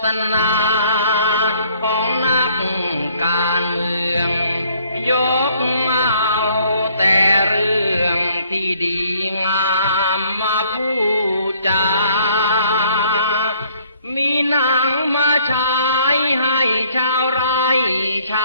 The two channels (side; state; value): both; inverted; correlation -0.62